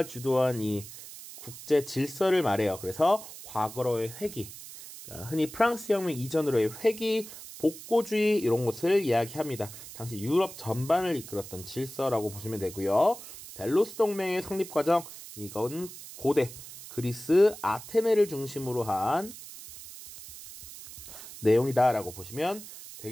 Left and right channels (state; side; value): noise; right; hiss, 14 dB below the sound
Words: 주도한 이 국제 질서를 말해요. 그래서 과거로의 회귀, 그러니까 흔히 프랑스 혁명 이전으로의 회귀, 복고주의 이런 것을 이야기합니다. 당시 유럽 전반을 이끌었던 질서라고 보시면 되고요. 델로스 동맹의 성립 과정, 이건 고대 그리스 아테네를 중심으로 한 내용이다라고 보시면